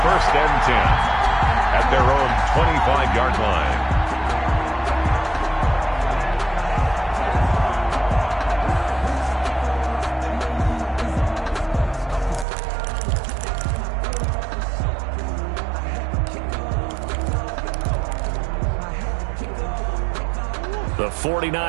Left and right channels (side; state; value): left; drops out; at 12.5 s